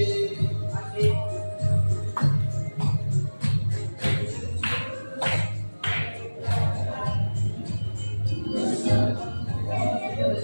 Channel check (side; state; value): both; inverted; correlation -1.00